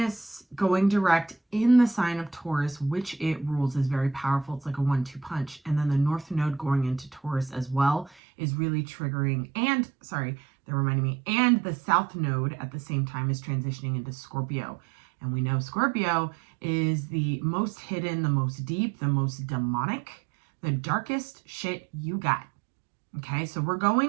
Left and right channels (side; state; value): left; drops out; at 8.2 s